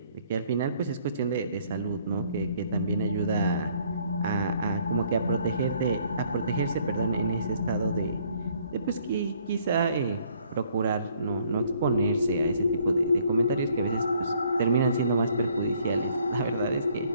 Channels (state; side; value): inverted; both; correlation -0.63